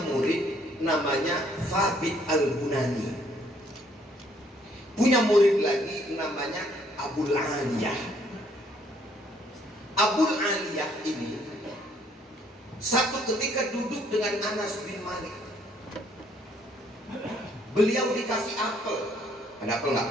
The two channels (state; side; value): normal; both; correlation 0.65